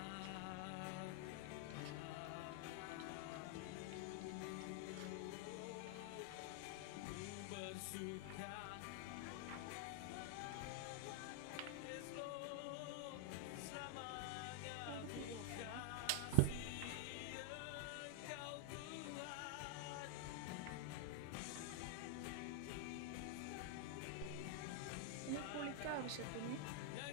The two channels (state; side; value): different; both; correlation 0.00